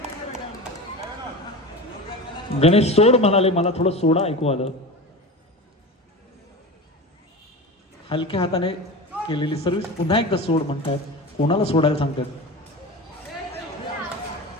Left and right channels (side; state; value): both; normal; correlation 0.29